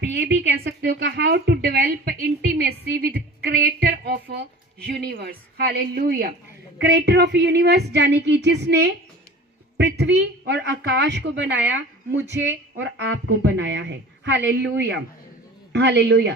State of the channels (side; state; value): both; normal; correlation 0.40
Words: ये भी कह सकते हो कि how to develop intimacy with creator of universe. Hallelujah. Creator of universe यानी कि जिसने पृथ्वी और आकाश को बनाया, मुझे और आपको बनाया है। Hallelujah,